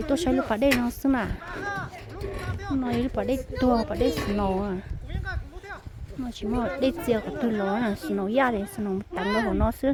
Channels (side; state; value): both; identical; correlation 1.00